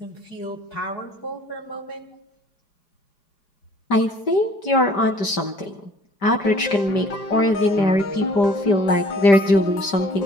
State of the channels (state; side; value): late; right; 5.1 ms